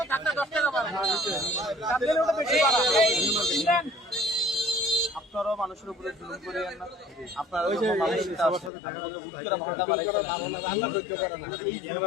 আপনারাও মানুষের উপরে জুলুম করিয়েন না। আপনারা ভাড়াটা এই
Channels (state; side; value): drops out; right; at 8.7 s